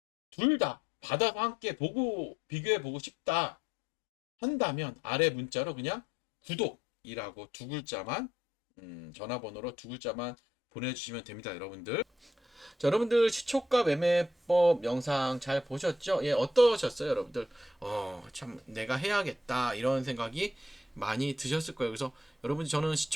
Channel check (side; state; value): both; normal; correlation 0.73